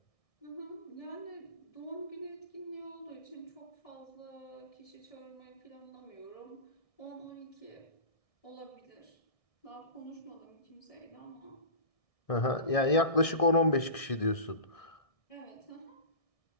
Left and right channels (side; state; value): right; late; 1.6 ms